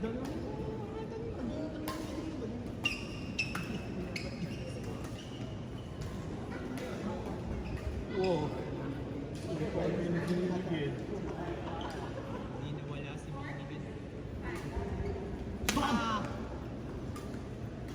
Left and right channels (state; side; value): identical; both; correlation 1.00